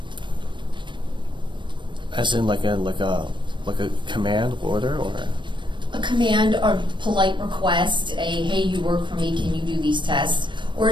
As in like a command order, or? A command or polite request, hey, you work for me, can you do these tests? Or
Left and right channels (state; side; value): late; left; 0.23 ms